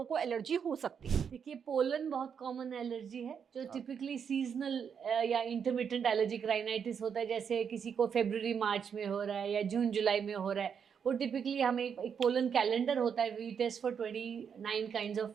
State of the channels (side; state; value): left; quieter; 7.2 dB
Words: को एलर्जी हो सकती है? देखिए, पोलन बहुत कॉमन एलर्जी है जो टिपिकली सीजनल या इंटरमिटेंट एलर्जिक राइनाइटिस होता है। जैसे किसी को फरवरी मार्च में हो रहा है या जून जुलाई में हो रहा है, वो टिपिकली हमें एक पोलन कैलेंडर होता है, we test for 29 kinds of.